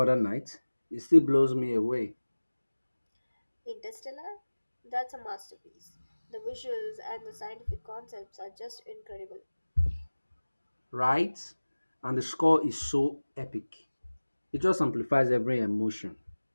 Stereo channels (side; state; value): both; inverted; correlation -1.00